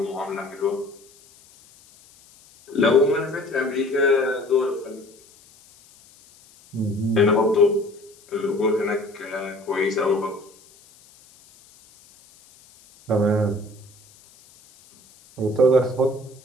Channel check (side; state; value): left; noise; hiss, 27 dB below the sound